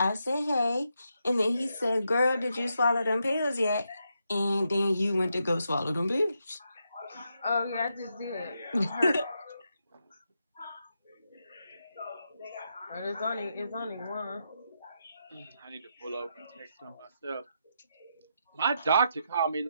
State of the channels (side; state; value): both; inverted; correlation -0.82